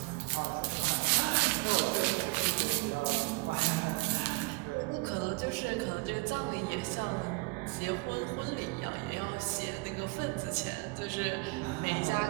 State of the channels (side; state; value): left; quieter; 26.5 dB